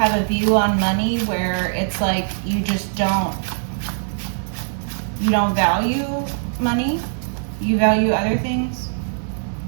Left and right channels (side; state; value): left; silent; digital silence